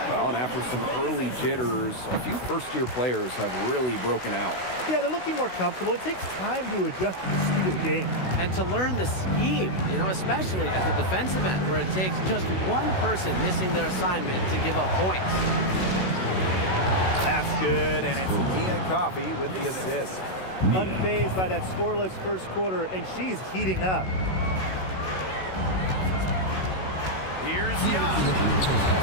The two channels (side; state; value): right; late; 16 ms